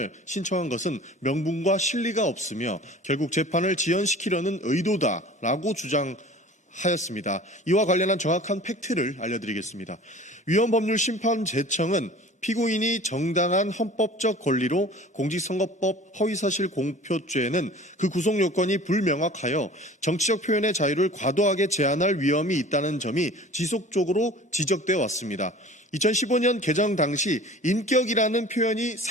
신청한 것은 명분과 실리가 없으며 결국 재판을 지연시키려는 의도다라고 주장하였습니다. 이와 관련한 정확한 팩트를 알려드리겠습니다. 위헌법률 심판 재청은 피고인이 정당한 헌법적 권리로 공직선거법 허위사실 공표죄는 그 구속 요건이 불명확하여 정치적 표현의 자유를 과도하게 제한할 위험이 있다는 점이 지속적으로 지적되어 왔습니다. 2015년 개정 당시 인격이라는 표현이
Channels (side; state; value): both; normal; correlation 0.43